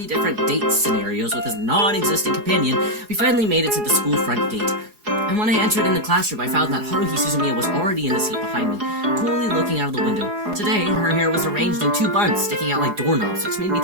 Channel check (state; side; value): late; left; 4.8 ms